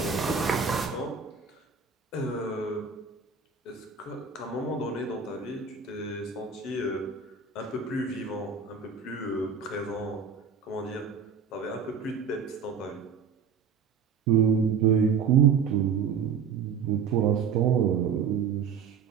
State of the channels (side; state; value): left; quieter; 6.2 dB